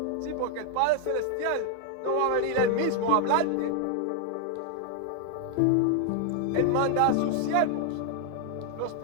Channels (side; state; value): both; different; correlation 0.00